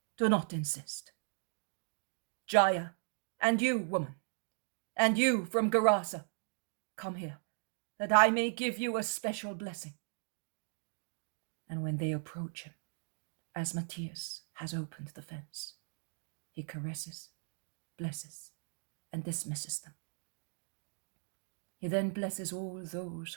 do not insist. Jaya, and you, woman, and you from Gerasa, come here, that I may give you a special blessing. And when they approach him, as Matthias has opened the fence, he caresses, blesses, and dismisses them. He then blesses all those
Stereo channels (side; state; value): left; silent; digital silence